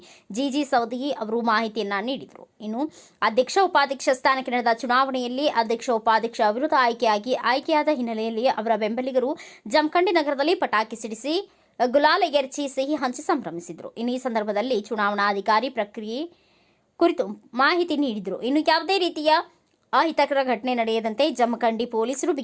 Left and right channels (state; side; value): identical; both; correlation 1.00